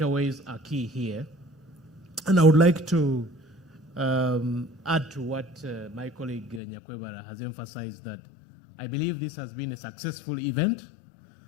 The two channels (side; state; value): right; drops out; at 6.6 s